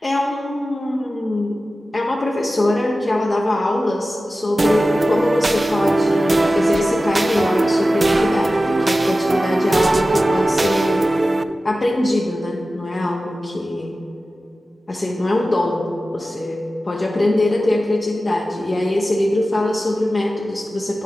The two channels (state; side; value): normal; both; correlation 0.95